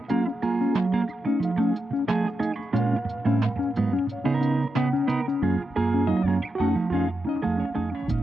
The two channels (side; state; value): both; normal; correlation 0.89